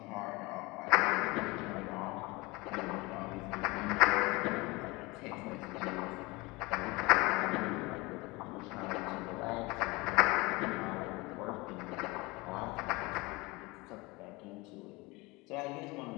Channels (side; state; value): right; quieter; 23.9 dB